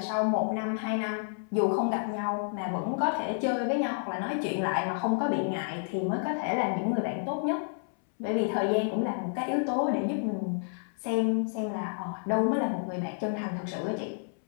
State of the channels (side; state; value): right; silent; 58 dB below the other